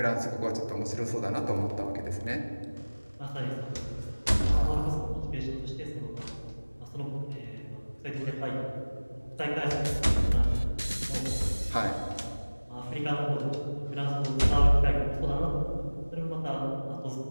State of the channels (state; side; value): inverted; both; correlation -1.00